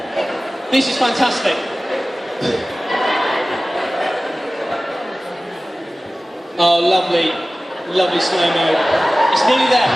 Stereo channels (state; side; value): normal; both; correlation 0.97